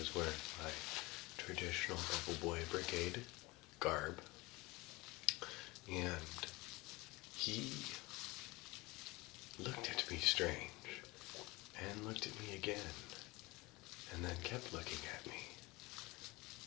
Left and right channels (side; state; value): right; quieter; 22.7 dB